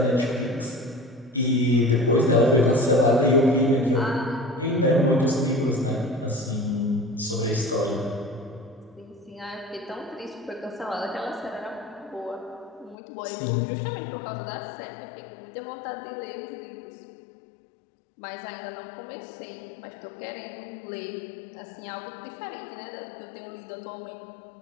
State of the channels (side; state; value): right; drops out; at 13.0 s